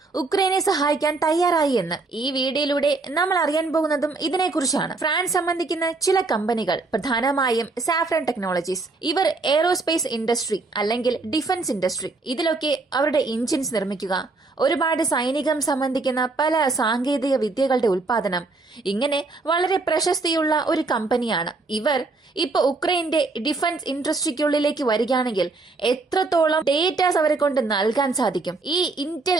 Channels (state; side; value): quieter; left; 3.6 dB